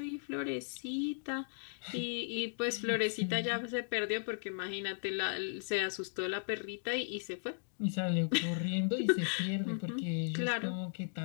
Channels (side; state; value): right; silent; digital silence